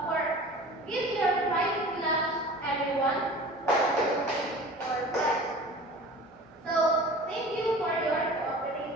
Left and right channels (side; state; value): both; normal; correlation 0.40